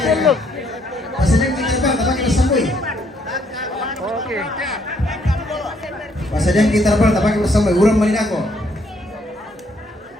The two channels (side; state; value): both; normal; correlation 0.69